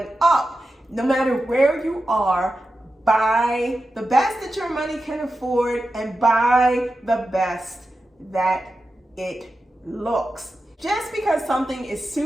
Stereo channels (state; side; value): normal; both; correlation 0.91